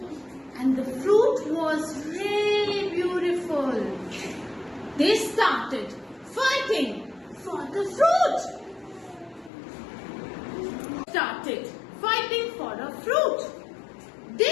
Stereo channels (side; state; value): right; drops out; at 9.5 s